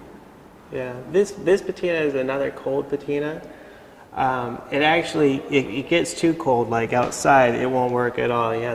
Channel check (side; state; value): both; identical; correlation 1.00